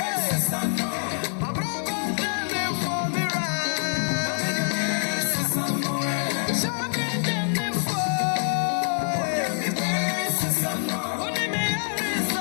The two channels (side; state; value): right; silent; digital silence